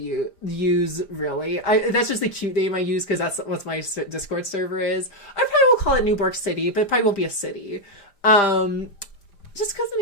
use really. That's just the cute name I use because that's what my Discord server is. I probably will call it Newborg City, but it probably won't be a city. Just because the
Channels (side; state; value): right; late; 5.1 ms